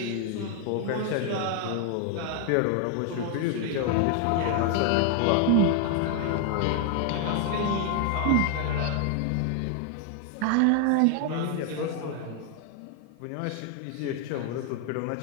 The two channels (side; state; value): both; different; correlation 0.00